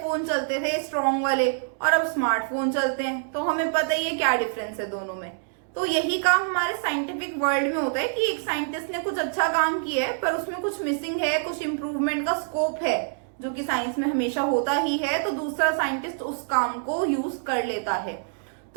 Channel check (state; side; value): silent; left; digital silence